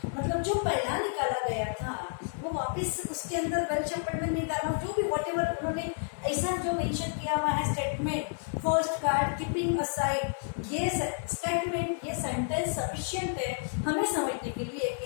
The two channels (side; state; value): right; silent; digital silence